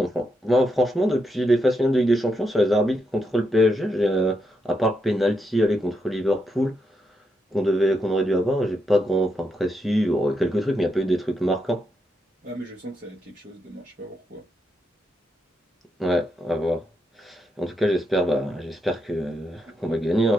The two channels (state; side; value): normal; both; correlation 0.82